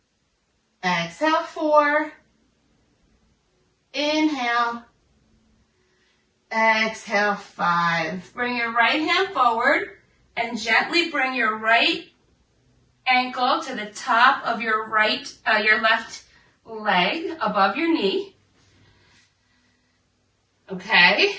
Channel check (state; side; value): identical; both; correlation 1.00